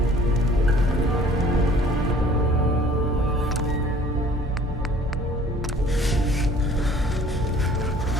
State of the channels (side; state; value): both; normal; correlation 0.53